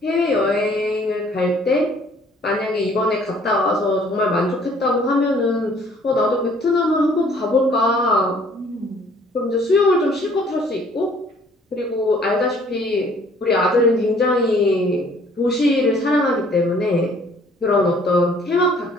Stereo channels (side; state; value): both; normal; correlation 0.58